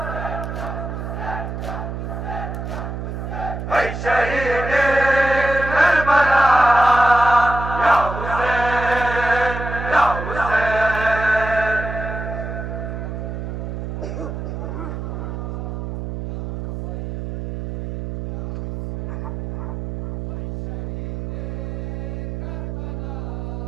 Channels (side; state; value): right; noise; hum, 5 dB below the sound